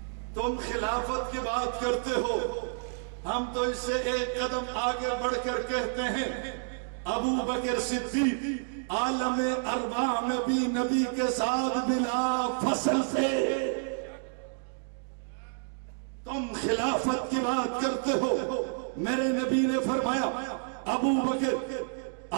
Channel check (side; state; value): left; silent; digital silence